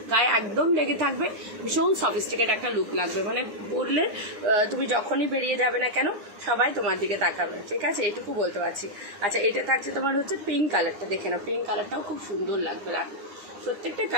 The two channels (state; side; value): late; left; 9.7 ms